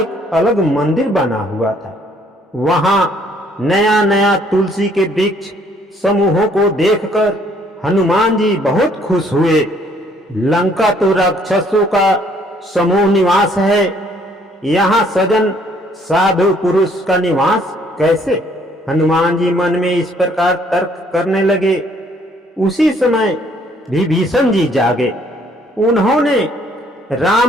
अलग मंदिर बना हुआ था। वहां नया नया तुलसी के वृक्ष समूहों को देखकर हनुमान जी बहुत खुश हुए। लंका तो राक्षसों का समूह निवास है, यहाँ सजन साधु पुरुष का निवास कैसे? हनुमान जी मन में इस प्रकार तर्क करने लगे। उसी समय विभीषण जी जागे। उन्होंने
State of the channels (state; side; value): normal; both; correlation 0.63